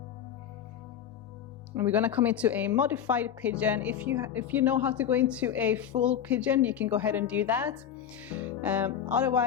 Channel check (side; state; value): right; quieter; 9.3 dB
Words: And we're going to come into a modified pigeon. If you know how to go into a full pigeon, you can go ahead and do that.